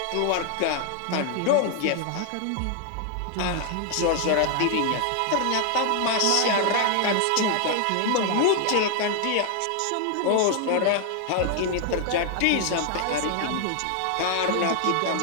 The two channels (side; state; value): both; different; correlation 0.00